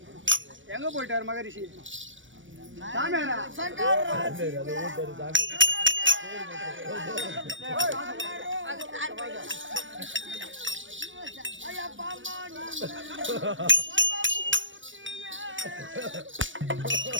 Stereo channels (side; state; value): left; late; 0.56 ms